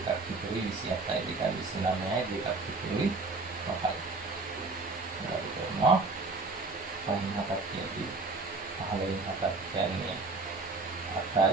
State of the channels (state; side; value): quieter; left; 3.7 dB